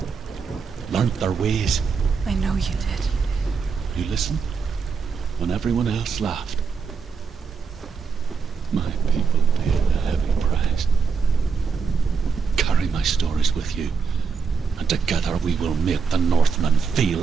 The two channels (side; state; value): left; quieter; 5.5 dB